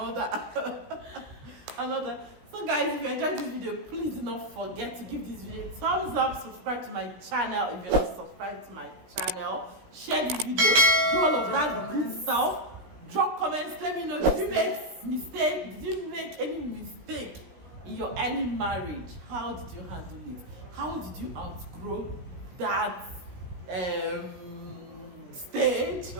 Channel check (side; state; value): left; late; 16 ms